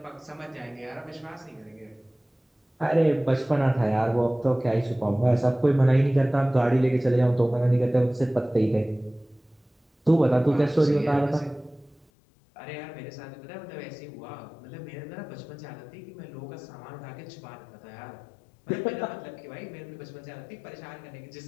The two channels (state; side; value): drops out; right; at 12.1 s